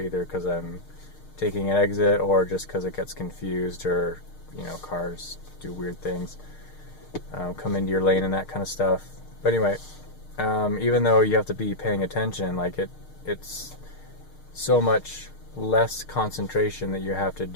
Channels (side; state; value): right; late; 6.5 ms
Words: because I'm taking an exit or just because it gets confused, or cars do weird things, come into your lane and that kind of stuff. But anyway, even though you have to be paying attention, it's so much less concentration that you have to